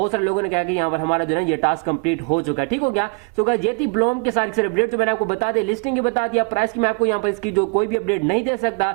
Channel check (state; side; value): quieter; left; 35.6 dB